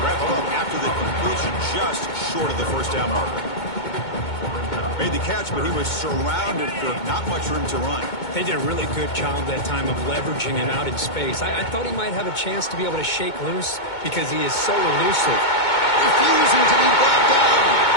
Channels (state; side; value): late; right; 2.2 ms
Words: him up after the completion, just short of the first down marker. Made the catch, but he was surrounded for not much room to run. They did a really good job that time of leveraging him out in space. I thought he might have a chance to be able to shake loose because he is so elusive. Refusing to be brought down.